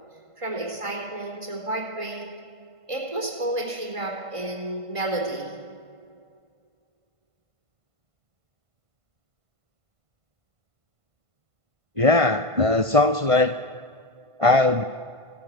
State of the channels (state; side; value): late; left; 1.5 ms